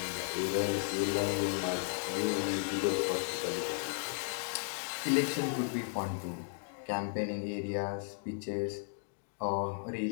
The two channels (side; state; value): right; silent; digital silence